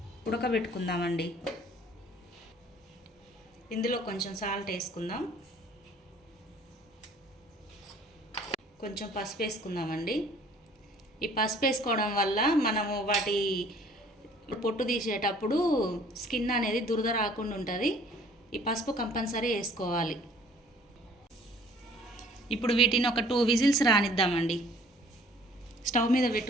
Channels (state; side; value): normal; both; correlation 0.55